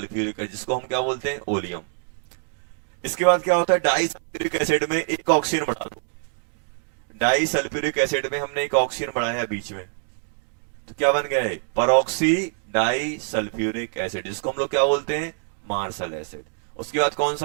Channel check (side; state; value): left; silent; 59 dB below the other